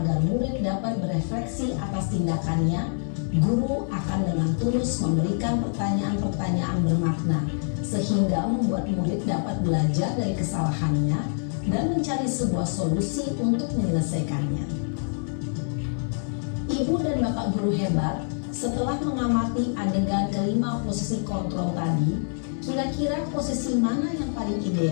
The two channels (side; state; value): right; silent; 61 dB below the other